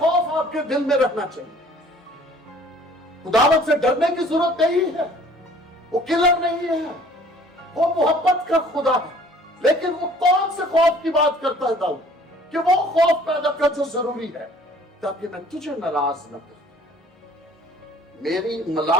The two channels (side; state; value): both; normal; correlation 0.53